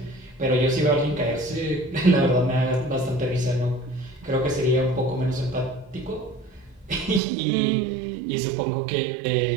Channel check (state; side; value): drops out; left; at 7.2 s